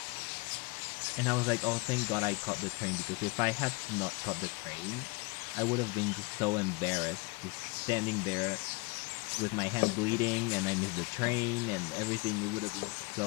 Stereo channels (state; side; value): quieter; right; 27.8 dB